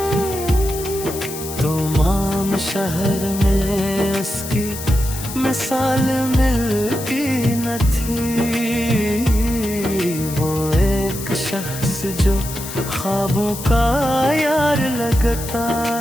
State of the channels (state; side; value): noise; left; hiss, 10 dB below the sound